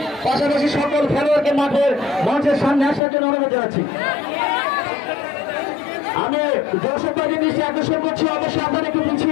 পাশাপাশি সকল খেলোয়াড়কে মাঠের মঞ্চের সামনে আসার জন্য অনুরোধ জানাচ্ছি। আমি দর্শক ভাইদের দৃষ্টি আকর্ষণ করছি, অবশ্যই আপনারা একটু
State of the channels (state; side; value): drops out; right; at 3.0 s